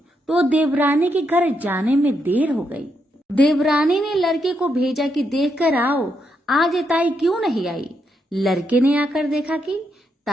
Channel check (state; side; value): normal; both; correlation 0.80